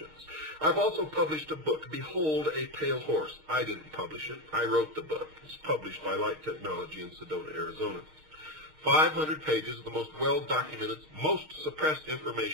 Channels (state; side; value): late; left; 6.5 ms